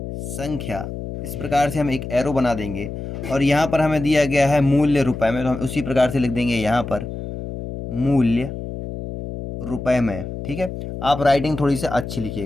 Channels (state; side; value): noise; left; hum, 8 dB below the sound